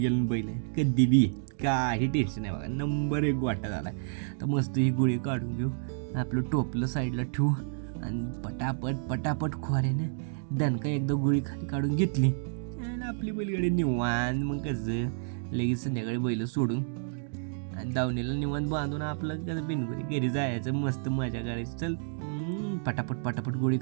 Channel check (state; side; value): silent; left; digital silence